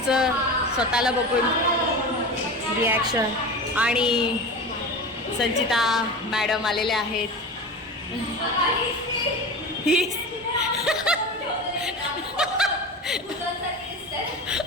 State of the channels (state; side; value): normal; both; correlation 0.30